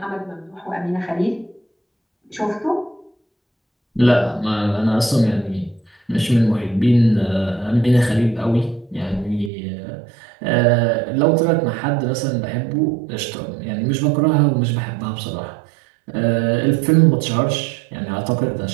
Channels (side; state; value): left; drops out; at 9.5 s